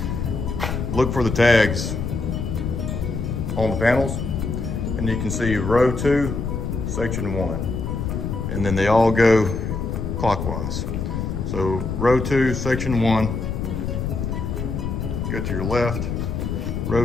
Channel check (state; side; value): noise; left; rumble, 3 dB below the sound